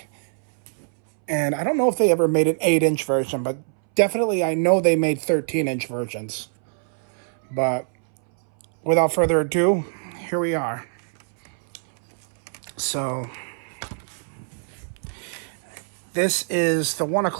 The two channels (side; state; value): left; silent; 63 dB below the other